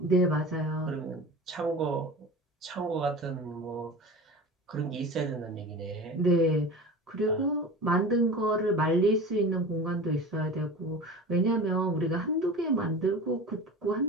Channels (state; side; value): normal; both; correlation 0.34